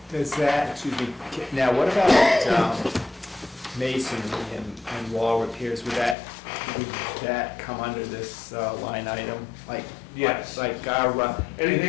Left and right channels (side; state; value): right; drops out; at 6.2 s